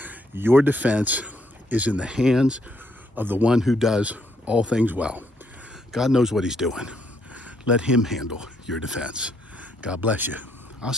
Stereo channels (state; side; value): normal; both; correlation 0.73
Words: your defense is in the hands of the one who does all things well. God knows what he's doing. Let him handle your defense. God bless you. I'll